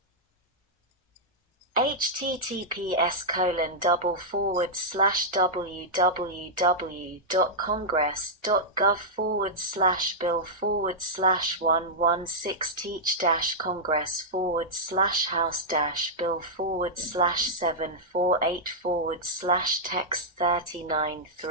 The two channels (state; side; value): normal; both; correlation -0.08